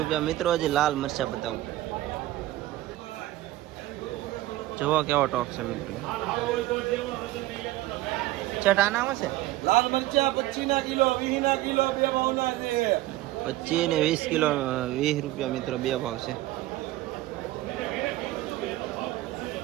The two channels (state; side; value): quieter; left; 16.3 dB